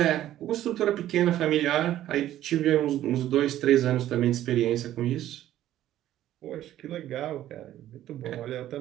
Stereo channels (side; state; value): left; quieter; 12.9 dB